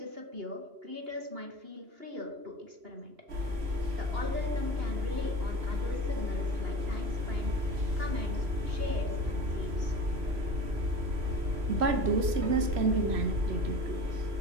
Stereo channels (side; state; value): left; late; 3.1 ms